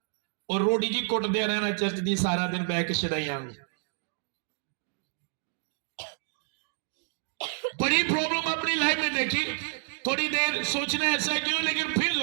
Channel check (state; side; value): silent; left; digital silence